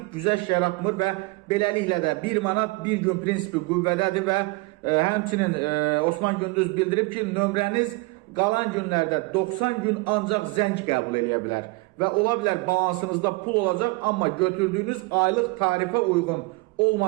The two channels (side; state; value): left; quieter; 24.3 dB